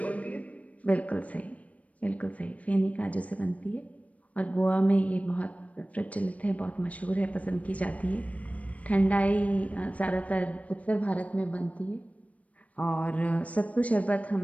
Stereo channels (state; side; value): late; right; 0.067 ms